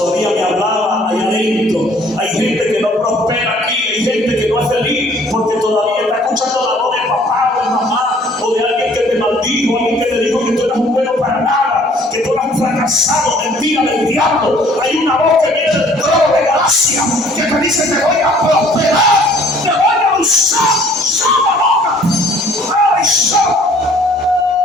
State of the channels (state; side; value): normal; both; correlation 0.56